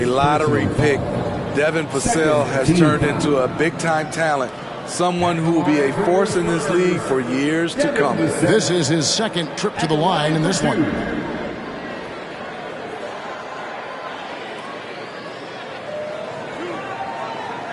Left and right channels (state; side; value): identical; both; correlation 1.00